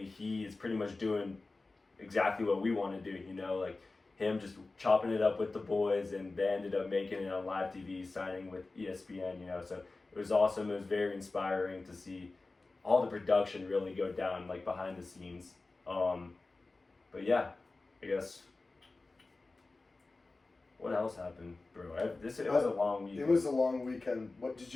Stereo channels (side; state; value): right; quieter; 3.4 dB